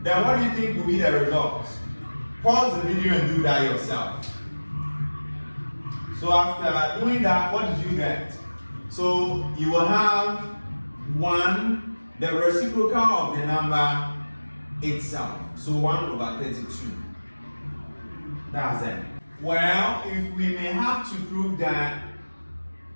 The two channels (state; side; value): inverted; both; correlation -1.00